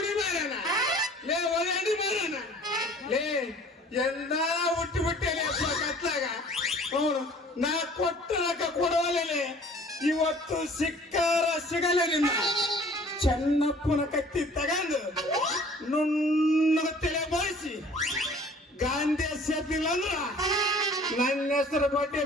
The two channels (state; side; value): normal; both; correlation 0.51